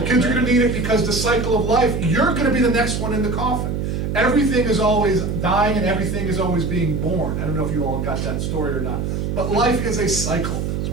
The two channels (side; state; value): right; noise; hum, 2 dB below the sound